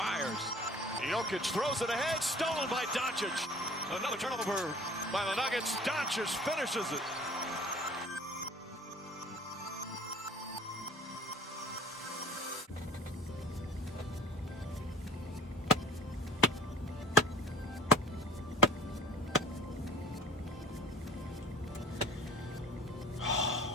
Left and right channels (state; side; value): normal; both; correlation 0.46